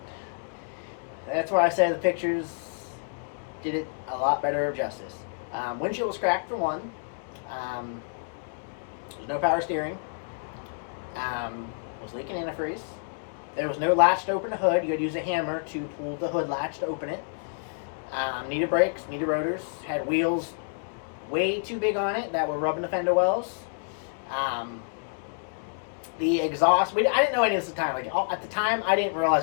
That's why I say the pictures did it a lot better of justice. Windshield was cracked for one. There's no power steering. Was leaking antifreeze. There was no latch to open the hood. You had to use a hammer to pull the hood latch to open it. Needed brakes, needed rotors. Had wheels way too big on it that were rubbing the fender wells. The exhaust, I didn't know any of this at the time. Like, at the time, I didn't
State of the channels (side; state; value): right; silent; digital silence